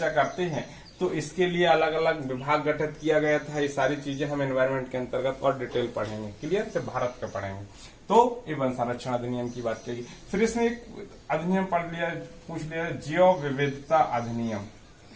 करते हैं तो इसके लिए अलग अलग विभाग गठित किया गया था। ये सारी चीजें हम एनवायरमेंट के अंतर्गत और डिटेल पढ़ेंगे, क्लियर, से भारत का पढ़ेंगे। तो ये वन संरक्षण अधिनियम की बात कही। फिर इसने एक अधिनियम पढ़ लिया, पूछ लिया, जैव विविधता अधिनियम।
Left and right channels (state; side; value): identical; both; correlation 1.00